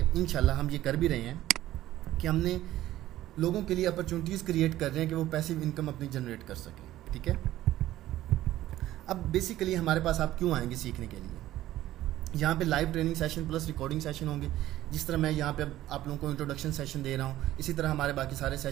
इंशाल्लाह हम ये कर भी रहे हैं कि हमने लोगों के लिए अपॉर्चुनिटीज़ क्रिएट कर रहे हैं कि वो पैसिव इनकम अपनी जनरेट कर सकें। ठीक है, अब बेसिकली हमारे पास आप क्यों आएंगे सीखने के लिए? यहाँ पे live training session plus recording session होंगे। जिस तरह मैं यहाँ पे अब आप लोगों को इंट्रोडक्शन सेशन दे रहा हूँ, इसी तरह हमारे बाकी सारे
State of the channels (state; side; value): quieter; left; 14.4 dB